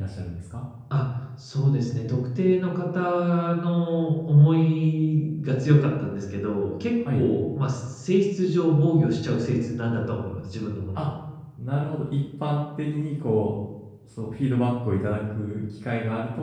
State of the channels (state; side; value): identical; both; correlation 1.00